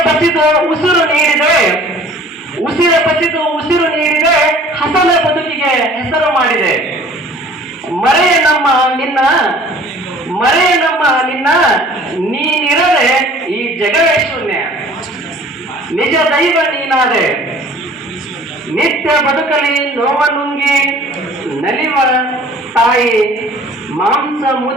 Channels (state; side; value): normal; both; correlation 0.50